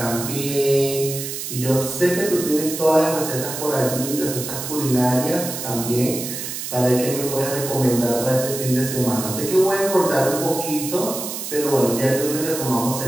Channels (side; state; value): right; noise; hiss, 6 dB below the sound